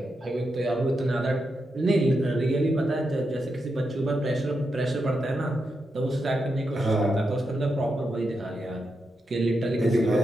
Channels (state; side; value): normal; both; correlation 0.85